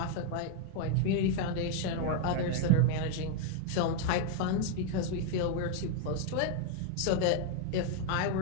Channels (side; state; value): both; different; correlation 0.00